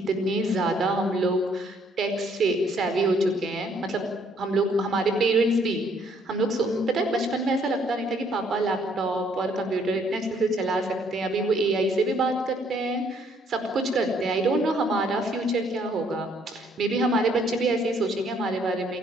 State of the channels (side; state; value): both; normal; correlation 0.66